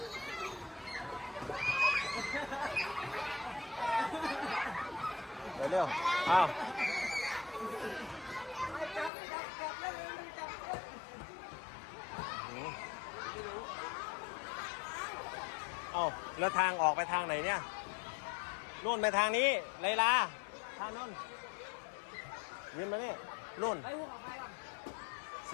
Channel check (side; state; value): right; drops out; at 9.1 s